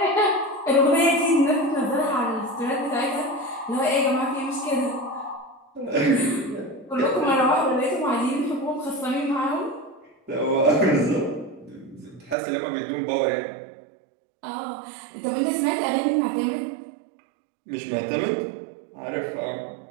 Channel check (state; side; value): drops out; left; at 12.4 s